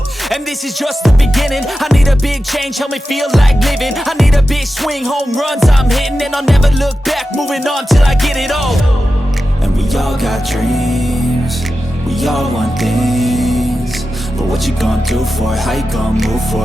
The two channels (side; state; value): both; normal; correlation 0.92